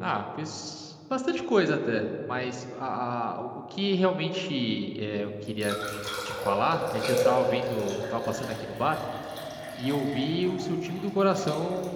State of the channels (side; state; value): both; identical; correlation 1.00